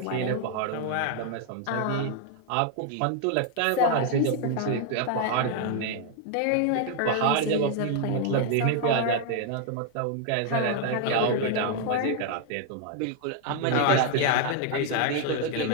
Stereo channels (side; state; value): both; different; correlation 0.00